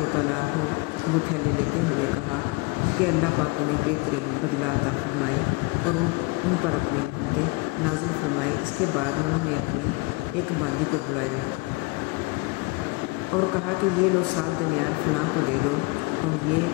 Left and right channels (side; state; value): right; quieter; 25.1 dB